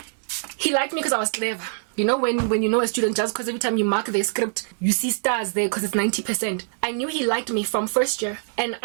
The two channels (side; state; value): left; silent; digital silence